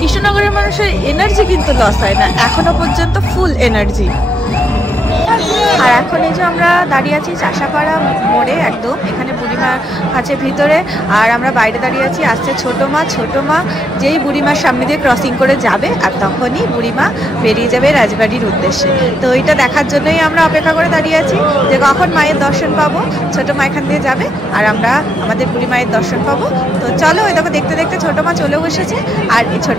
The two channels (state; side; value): normal; both; correlation 0.79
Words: মানুষের এনার্জি কিন্তু লস হয় না, এখনো পর্যন্ত ফুল এনার্জি। আর এখন এই যে আমরা দাঁড়িয়ে আছি চাষাপাড়া মোড়ে, একদম এখানে বুড়িমা আছে ভিতরে, আর আমরা বাইরে দাঁড়িয়ে আছি। আসছে ছোটো মা যেই বুড়িমার সামনে দিয়ে ক্রসিং করে যাবে, আর তখনই বুড়িমা বেরিয়ে যাবে রাজবাড়ির উদ্দেশ্যে। তো এইটা দেখার জন্যই আমরা অপেক্ষা করে দাঁড়িয়ে আছি, যে কখন মায়ের দর্শন পাবো। ছোটো মা এখান দিয়ে যাবে আর আমরা আমাদের বুড়ি মায়ের দর্শন পাবো। তো চলো ওই দেখো দেখতে দেখতে ছোটো মা চলেও এসেছে। আর এই